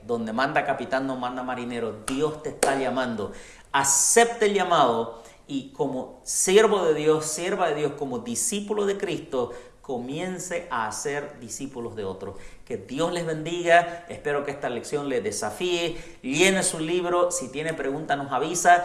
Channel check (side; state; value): both; identical; correlation 1.00